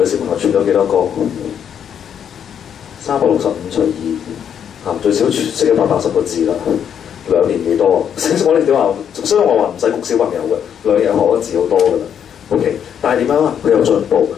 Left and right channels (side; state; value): right; quieter; 8.5 dB